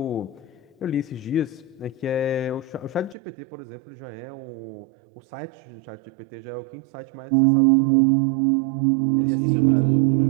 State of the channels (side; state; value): left; drops out; at 3.2 s